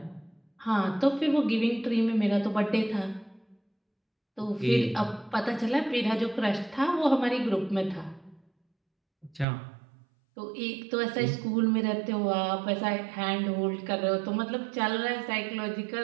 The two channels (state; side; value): drops out; left; at 9.5 s